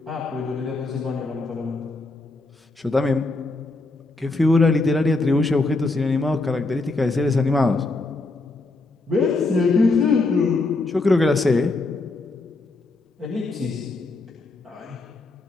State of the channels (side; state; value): right; quieter; 3.3 dB